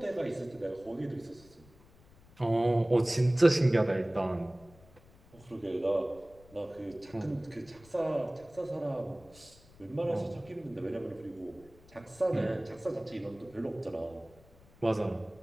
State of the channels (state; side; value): noise; left; rumble, 25 dB below the sound